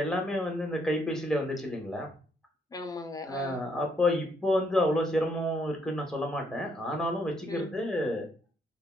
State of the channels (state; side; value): normal; both; correlation 0.72